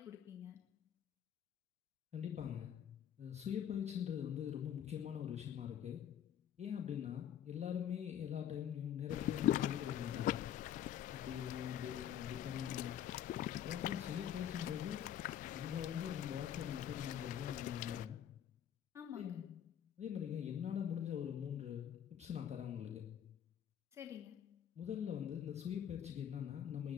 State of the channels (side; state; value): right; quieter; 9.9 dB